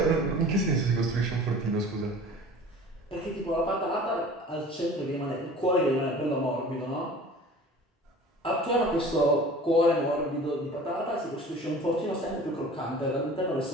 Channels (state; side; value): normal; both; correlation 0.43